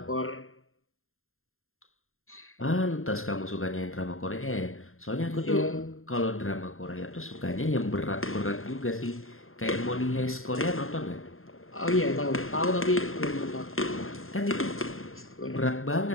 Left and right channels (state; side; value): late; right; 0.61 ms